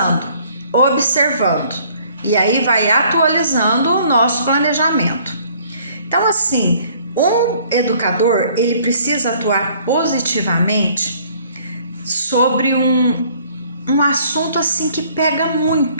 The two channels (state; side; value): inverted; both; correlation -0.59